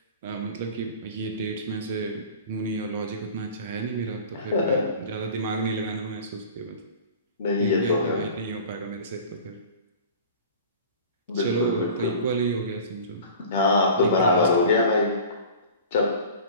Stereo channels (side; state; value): both; inverted; correlation -0.40